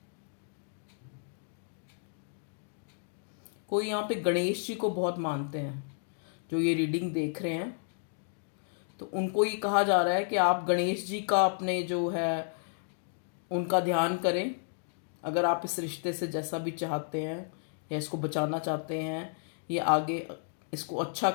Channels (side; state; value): right; silent; digital silence